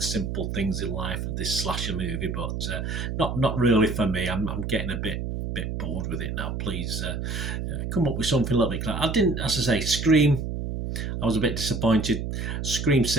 simple things in life of this slasher movie, but not really for me. I'm getting a bit bored with it now. Please come up with something a little bit clear. I didn't, as I say, Scream, I was a bit disappointed. Scream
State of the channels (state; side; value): noise; right; hum, 4 dB below the sound